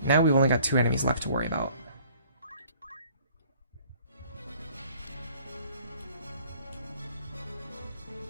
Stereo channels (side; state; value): both; inverted; correlation -0.55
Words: Now we've only got 2 enemies left to worry about.